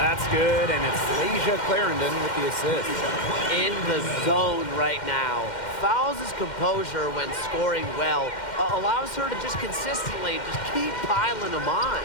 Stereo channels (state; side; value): late; right; 2.1 ms